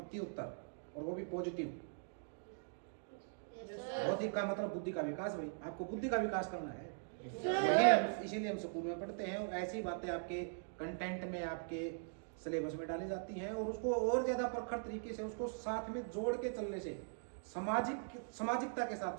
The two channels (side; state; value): left; silent; digital silence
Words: और वो भी पॉजिटिव। बौद्धिक का मतलब बुद्धि का विकास। भाई आपको बुद्धि का विकास करना है, इसीलिए हम स्कूल में पढ़ते हैं। ऐसी बातें आपके कंटेंट में, आपके सिलेबस में डाली जाती हैं, और उसको और ज्यादा प्रखर तरीके से उसको साथ में जोड़ के चलने से, सामाजिकता के साथ